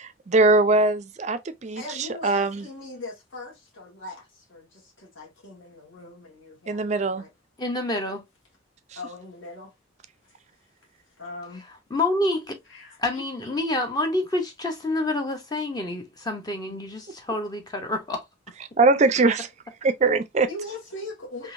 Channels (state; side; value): normal; both; correlation 0.24